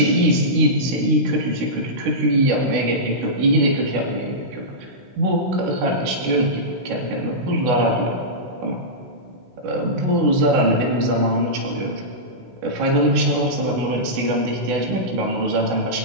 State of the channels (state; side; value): late; left; 16 ms